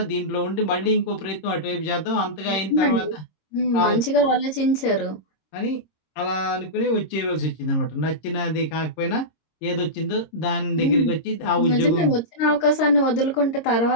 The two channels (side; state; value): right; late; 26 ms